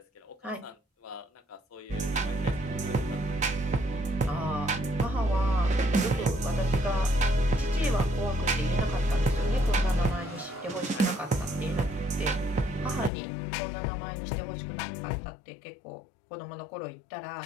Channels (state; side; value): drops out; right; at 13.1 s